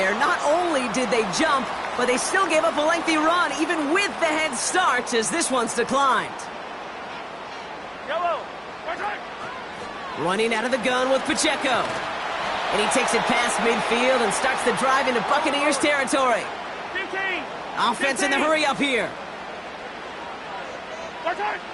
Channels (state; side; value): identical; both; correlation 1.00